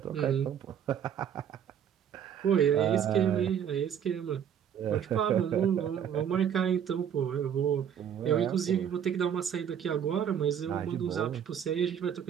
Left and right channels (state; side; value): quieter; left; 8.7 dB